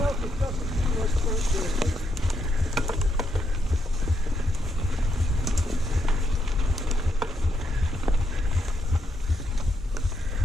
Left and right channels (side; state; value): both; normal; correlation 0.78